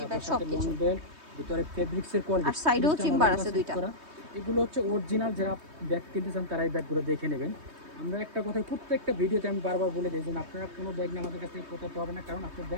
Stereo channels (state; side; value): late; left; 3.2 ms